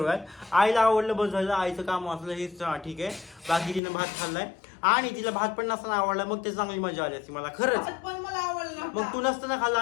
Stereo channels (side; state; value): right; drops out; at 3.8 s